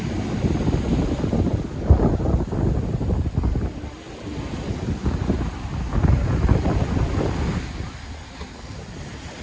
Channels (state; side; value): identical; both; correlation 1.00